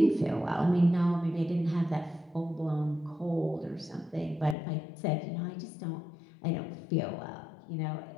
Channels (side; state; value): right; drops out; at 4.5 s